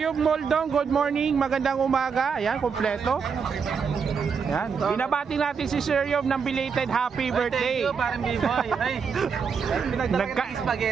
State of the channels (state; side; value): quieter; left; 6.0 dB